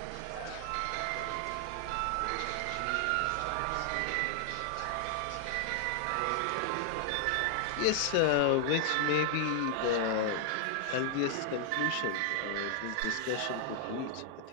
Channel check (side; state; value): both; different; correlation 0.00